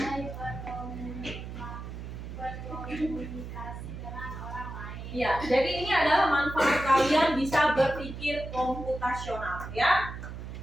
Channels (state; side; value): noise; right; hum, 9 dB below the sound